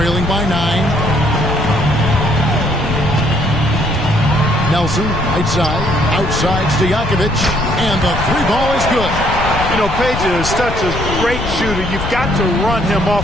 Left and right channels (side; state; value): left; noise; rumble, 5 dB below the sound